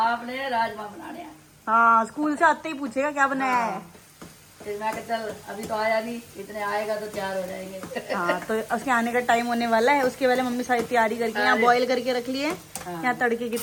राजमा बनाने हैं। हाँ स्कूल से आते ही पूछेगा क्या बनाया है। फिर मैं कहा चल अभी तो आया नहीं, इतने आएगा तो तैयार हो जाएंगे। हाँ तो उसके आने का टाइम होने वाला है, उसके पहले मम्मी सारी तैयारी करके यहाँ बॉईल करके रख लिए, यहाँ तड़के की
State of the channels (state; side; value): identical; both; correlation 1.00